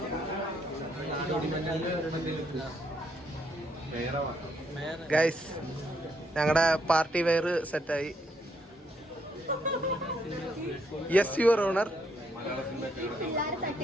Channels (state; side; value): normal; both; correlation 0.73